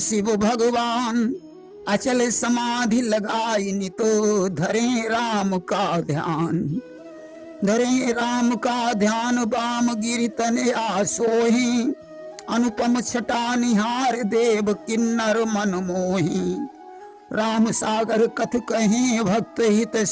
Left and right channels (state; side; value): identical; both; correlation 1.00